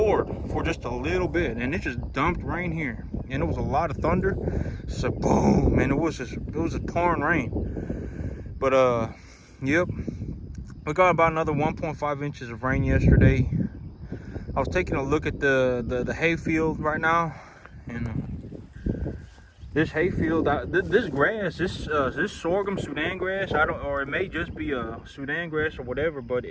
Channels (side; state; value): both; identical; correlation 1.00